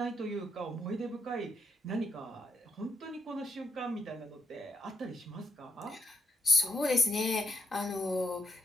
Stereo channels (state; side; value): normal; both; correlation 0.78